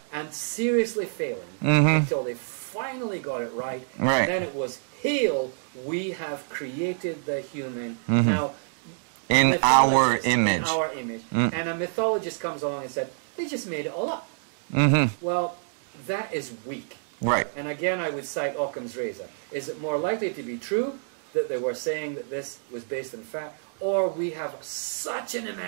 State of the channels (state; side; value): silent; left; digital silence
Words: and seriously failing until they finally got it right. And then it was, hail, we have created the human. Now, in our image. In our image. And a mythologist comes along and said, they just made it all up. Well, that is weak. And again, I would cite Occam's razor. Is it more likely to be true that they were saying that this was based on fact, or we have such an